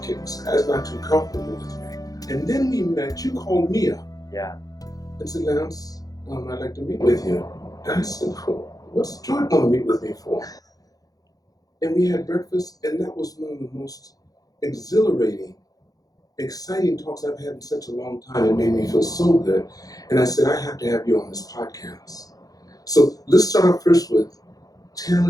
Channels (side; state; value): right; late; 0.18 ms